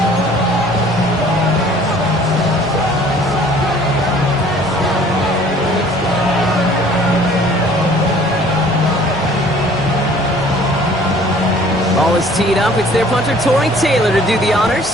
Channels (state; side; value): normal; both; correlation 0.53